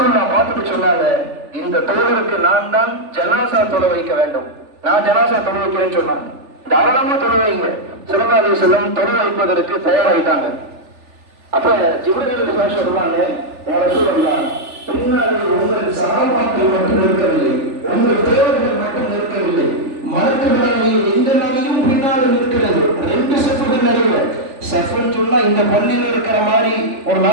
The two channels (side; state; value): left; late; 3.4 ms